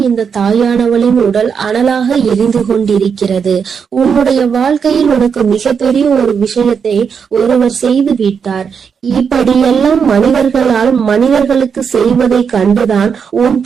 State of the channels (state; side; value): quieter; left; 6.5 dB